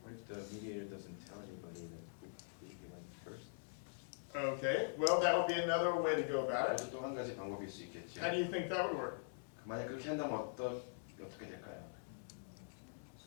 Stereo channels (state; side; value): silent; right; digital silence